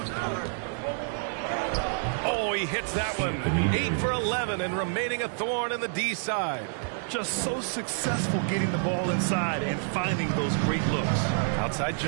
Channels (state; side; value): silent; left; 59 dB below the other